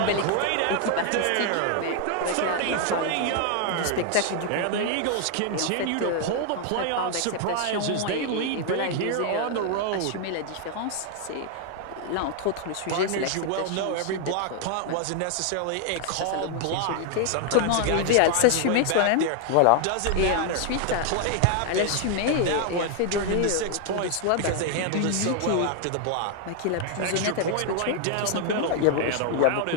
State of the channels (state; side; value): different; both; correlation 0.00